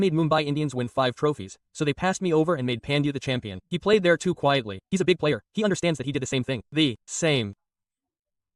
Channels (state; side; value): identical; both; correlation 1.00